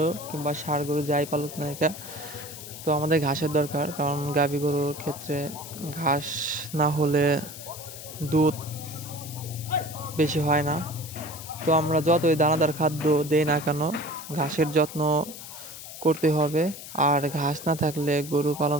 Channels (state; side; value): noise; left; hiss, 12 dB below the sound